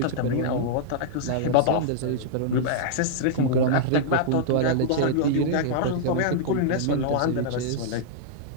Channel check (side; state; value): both; different; correlation -0.02